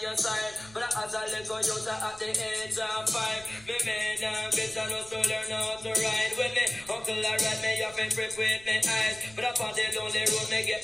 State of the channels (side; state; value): right; noise; rumble, 21 dB below the sound